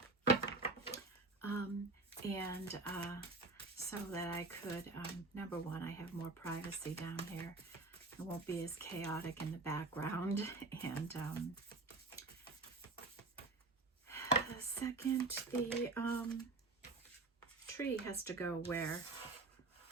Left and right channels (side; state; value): left; quieter; 3.4 dB